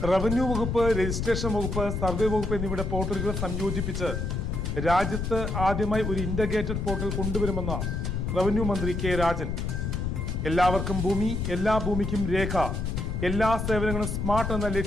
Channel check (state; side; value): noise; left; rumble, 2 dB below the sound